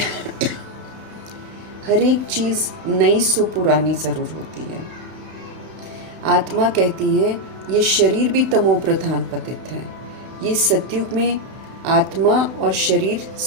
हर एक चीज़ नई सो पुरानी ज़रूर होती है। आत्मा कहती है ये शरीर भी तमो प्रधान पतित है। ये सतयुग में आत्मा और शरीर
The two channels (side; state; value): left; late; 31 ms